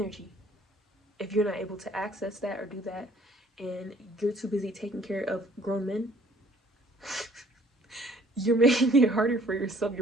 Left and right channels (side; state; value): both; normal; correlation 0.58